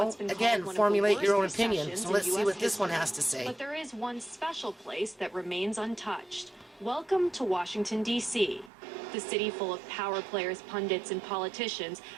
been again, called one of the formulate your own worst opinion. recessions So in let's see US what this one history. has to say. But there is one special place that remains untouched. Welcome to Washington, D.C. The city full of power players, pundits, and politicians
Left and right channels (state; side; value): drops out; left; at 8.7 s